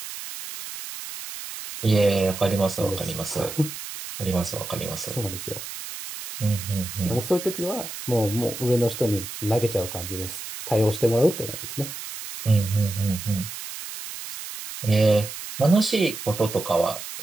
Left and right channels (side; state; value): right; noise; hiss, 10 dB below the sound